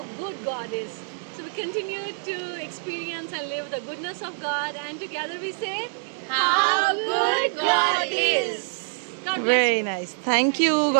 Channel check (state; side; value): silent; left; digital silence